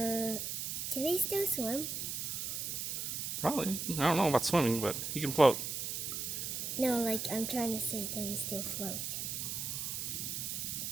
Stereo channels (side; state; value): right; noise; hiss, 3 dB below the sound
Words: they still swim? Probably. I don't know about swimming, but he can float. No, like, I'm trying to say that they still float.